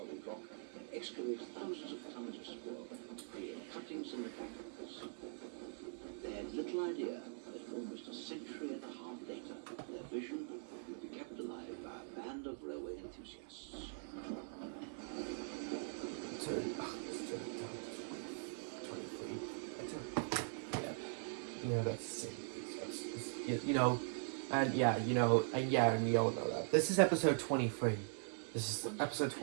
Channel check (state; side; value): silent; left; digital silence